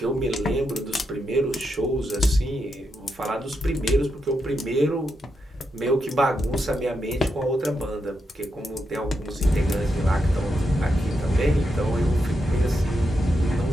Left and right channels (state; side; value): normal; both; correlation 0.84